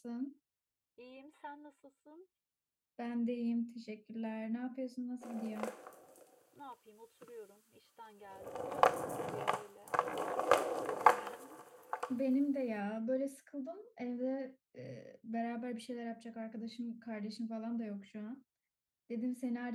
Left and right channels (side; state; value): both; identical; correlation 1.00